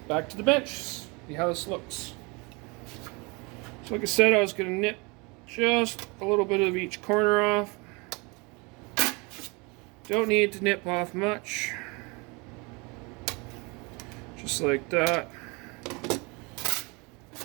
back to the bench. See how this looks. So like I said, I was going to nip just a little bit of each corner off. Don't need to nip off much. Just like that.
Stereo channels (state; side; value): quieter; left; 28.5 dB